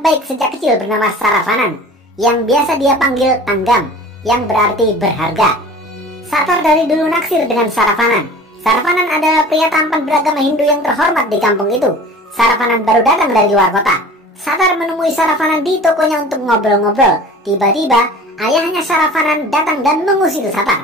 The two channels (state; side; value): normal; both; correlation 0.42